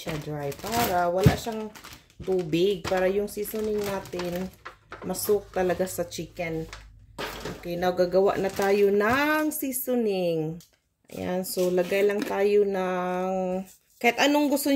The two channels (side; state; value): both; identical; correlation 1.00